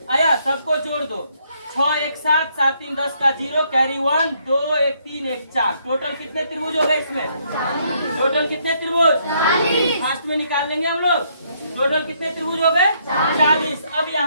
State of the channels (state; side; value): inverted; both; correlation -0.71